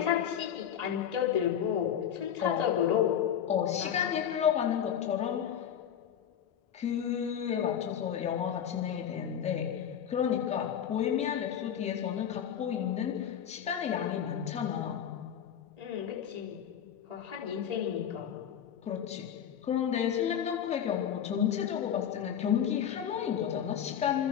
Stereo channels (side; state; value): right; quieter; 9.0 dB